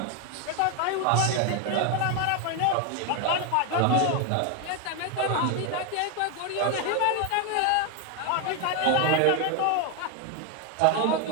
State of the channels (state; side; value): different; both; correlation 0.01